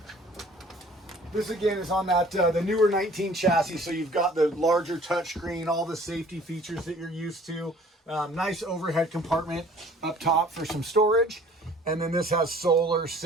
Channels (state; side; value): normal; both; correlation 0.52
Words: This again is on that the newer 19 chassis, so you've got the larger touchscreen, all the safety features that you're used to. Nice overhead compartment up top for some storage. And then this has solar